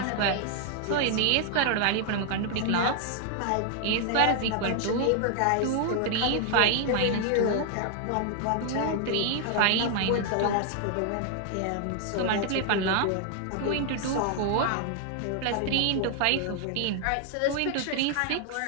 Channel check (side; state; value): both; different; correlation 0.00